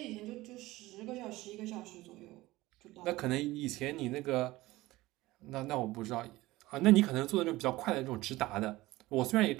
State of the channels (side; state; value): left; quieter; 18.6 dB